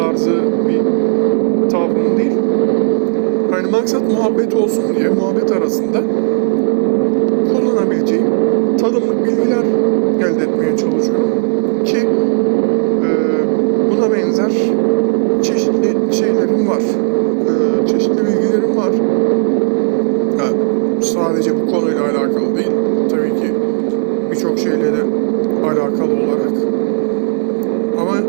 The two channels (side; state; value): left; silent; digital silence